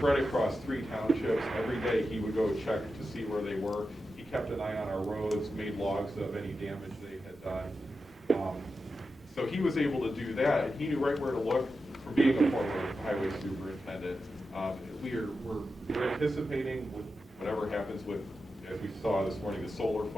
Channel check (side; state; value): both; normal; correlation 0.90